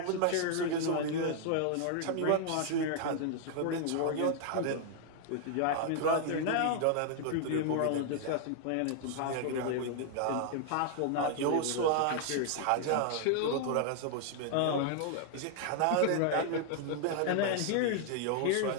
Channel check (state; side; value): different; both; correlation 0.00